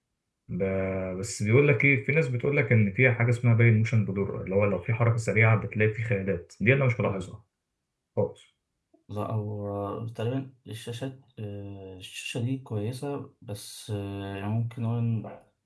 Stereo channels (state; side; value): identical; both; correlation 1.00